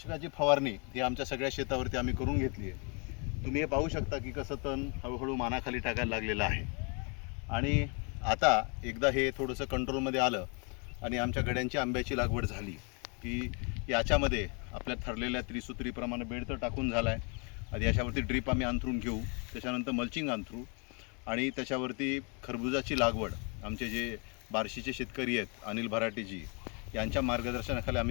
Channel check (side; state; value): right; quieter; 35.1 dB